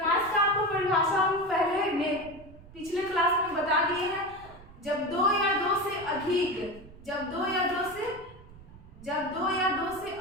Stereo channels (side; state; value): right; noise; rumble, 20 dB below the sound